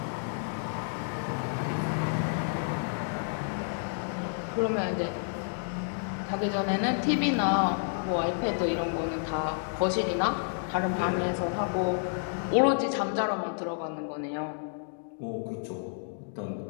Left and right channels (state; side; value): silent; right; digital silence